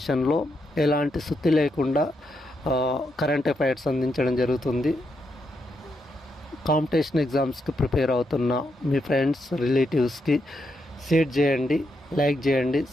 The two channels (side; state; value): both; normal; correlation 0.81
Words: ఎలాంటి సుత్తి లేకుండా కరెంట్ అఫైర్స్ అందించడం జరుగుతుంది. కాంపిటీషన్ ఎగ్జామ్స్కి ప్రిపేర్ అవుతున్న మీ ఫ్రెండ్స్, రిలేటివ్స్కి షేర్ చేయండి, లైక్ చేయండి,